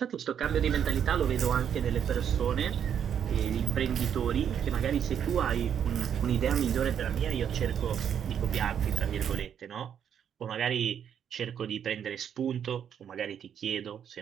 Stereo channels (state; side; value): quieter; left; 8.6 dB